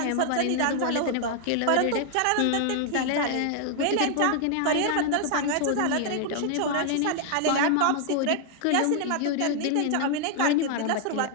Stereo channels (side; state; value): both; different; correlation 0.00